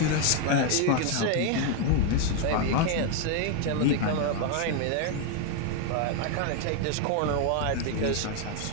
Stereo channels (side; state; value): both; different; correlation 0.01